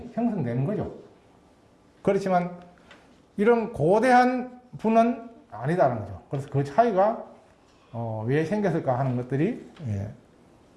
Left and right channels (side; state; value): both; identical; correlation 1.00